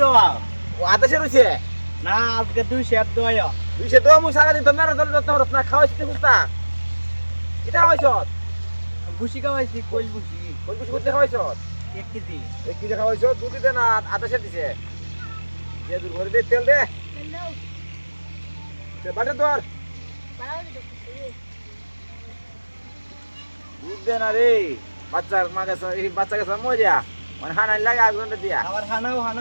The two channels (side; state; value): both; inverted; correlation -1.00